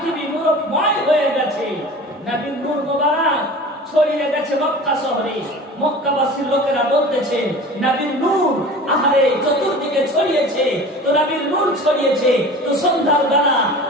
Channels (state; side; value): normal; both; correlation 0.38